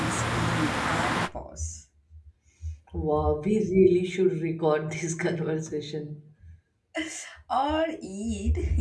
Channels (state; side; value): identical; both; correlation 1.00